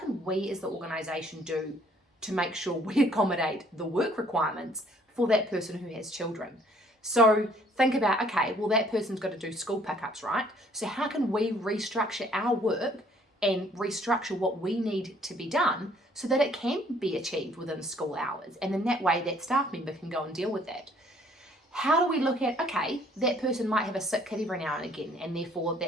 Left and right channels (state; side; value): normal; both; correlation 0.61